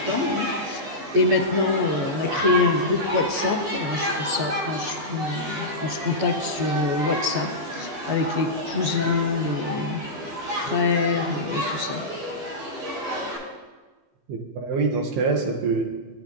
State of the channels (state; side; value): late; left; 15 ms